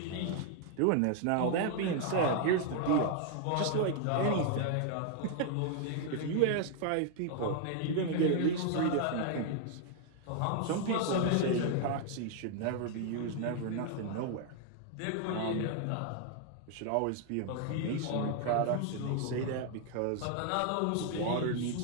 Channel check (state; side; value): different; both; correlation 0.00